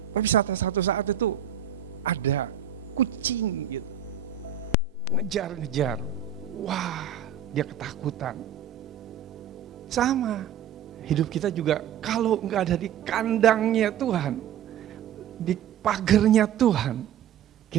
Tapi satu saat itu ada kucing gitu, ngejar-ngejar. Wah, dia ketakutan. Sama, hidup kita juga kalau gak ada di kandangnya Tuhan, di pagernya Tuhan,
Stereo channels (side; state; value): left; quieter; 8.7 dB